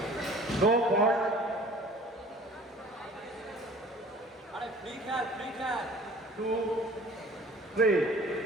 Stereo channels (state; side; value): normal; both; correlation 0.47